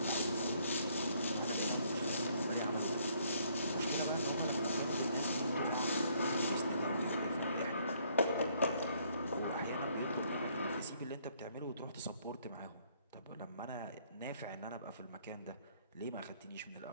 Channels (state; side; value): inverted; both; correlation -0.66